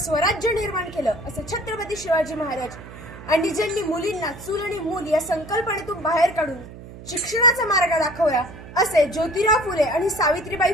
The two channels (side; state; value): right; noise; hum, 15 dB below the sound